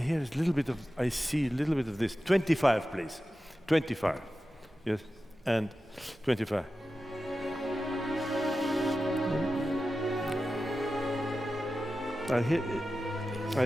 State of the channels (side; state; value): both; normal; correlation 0.93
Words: is a little bit of. I see a little bit of this. 25, please. 25. Yes. And 25.